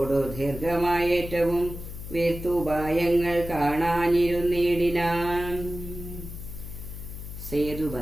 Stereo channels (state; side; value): noise; left; hum, 10 dB below the sound